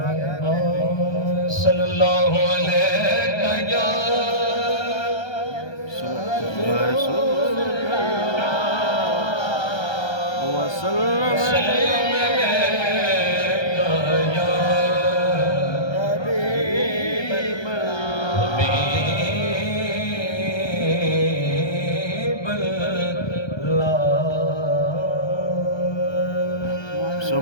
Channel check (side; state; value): right; late; 1.3 ms